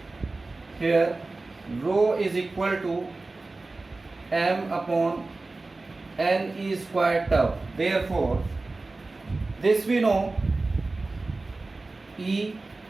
here rho is equal to M upon n e squared tau. Therefore this we know E,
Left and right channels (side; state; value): left; quieter; 3.3 dB